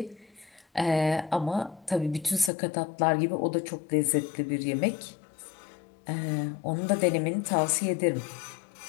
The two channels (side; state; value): right; drops out; at 2.5 s